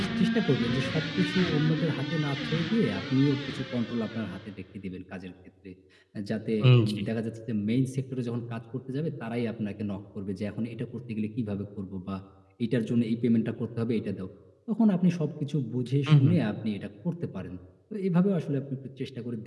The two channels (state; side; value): identical; both; correlation 1.00